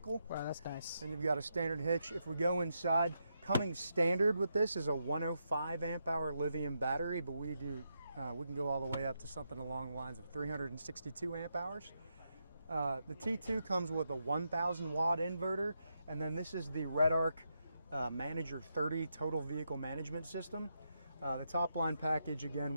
Wow, that's nice. And you've got a standard hitch. If we go inside, coming standard with this is a 105 amp hour lithium battery, but we can go all the way up to something along the lines of 362 amp hours. The T2 comes with a 1000 watt inverter, and then this is the RedArc Manager 30 total vehicle management system. The top line package again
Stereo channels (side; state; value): both; inverted; correlation -0.83